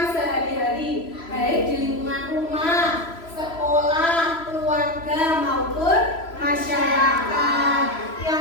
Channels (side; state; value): right; late; 3.0 ms